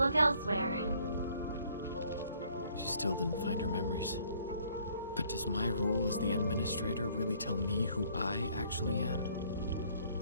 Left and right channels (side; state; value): both; inverted; correlation -0.61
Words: elsewhere. She still didn't find her memories. But does my role as the administrator really tell me who I actually am?